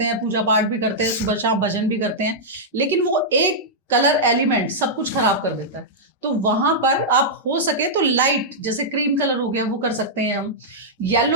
हैं, पूजा पाठ भी करते हैं, सुबह शाम भजन भी करते हैं, लेकिन वो एक कलर एलिमेंट सब कुछ खराब कर देता है। तो वहां पर आप हो सके तो लाइट, जैसे क्रीम कलर हो गया वो कर सकते हैं हम,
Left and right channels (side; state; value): both; normal; correlation -0.09